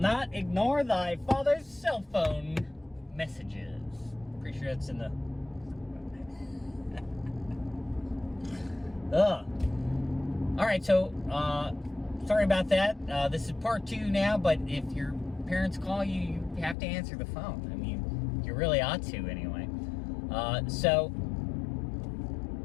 ignore thy father's cell phone messages. Pretty sure that's in the... Alright, so, sorry about that. This is part 2 now, but if your parents call you, you have to answer the phone. I mean, you really ought to anyway.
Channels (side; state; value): right; drops out; at 16.8 s